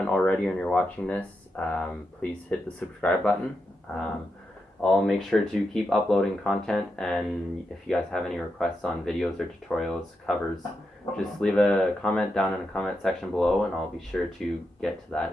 already and you're watching this, please hit the subscribe button. I'll make sure to keep uploading content, and if you guys have any requests on videos or tutorials, covers, just leave a comment down in the comment section below and I'll be sure to get to that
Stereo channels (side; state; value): both; normal; correlation 0.86